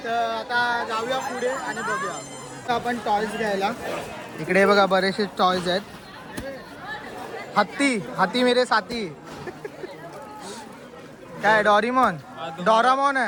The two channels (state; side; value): identical; both; correlation 1.00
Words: तर आता जाऊया पुढे आणि बघूया. तर आपण टॉयज घ्यायला. इकडे बघा बरेचसे टॉयज आहेत. हाती मेरे साथी. काय डोरेमॉन आहे